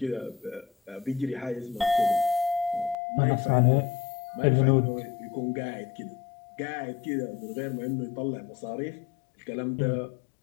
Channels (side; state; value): right; drops out; at 3.0 s